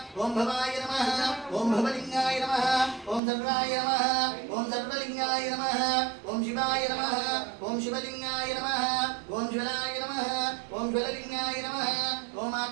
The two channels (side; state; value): left; drops out; at 3.2 s